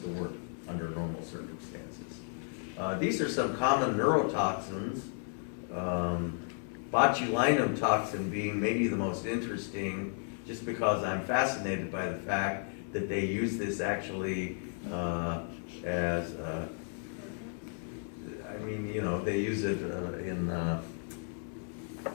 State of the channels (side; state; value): right; silent; 55 dB below the other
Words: work under normal circumstances. These are some common neurotoxins, botulinum toxin being maybe the most interesting, just because I'm fascinated by the fact that they use this actually as they use it in